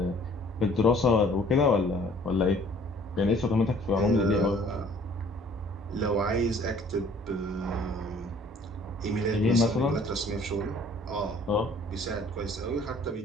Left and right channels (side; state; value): both; normal; correlation 0.55